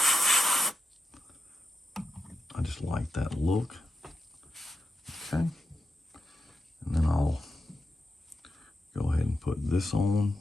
I just like that look. Okay, and then I'll go ahead and put this on.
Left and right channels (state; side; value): normal; both; correlation 0.88